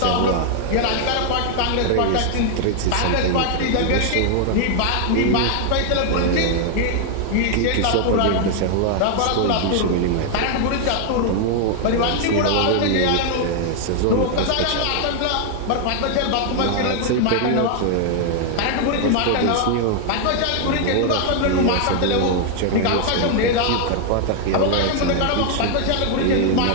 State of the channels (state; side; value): different; both; correlation 0.00